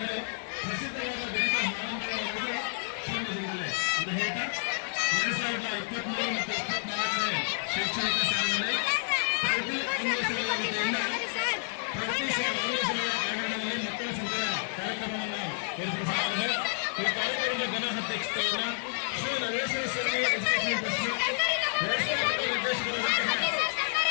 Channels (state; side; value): silent; right; digital silence